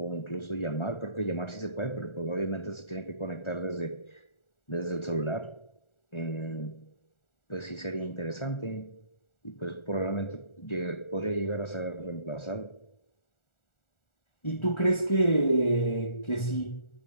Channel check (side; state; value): right; late; 1.4 ms